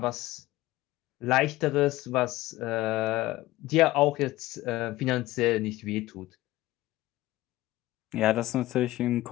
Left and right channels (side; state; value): right; quieter; 17.4 dB